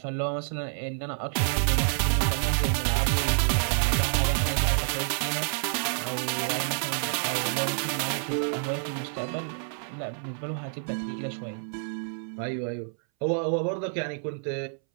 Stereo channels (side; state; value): left; silent; 59 dB below the other